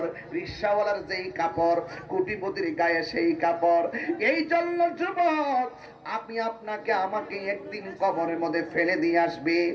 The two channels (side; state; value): both; identical; correlation 1.00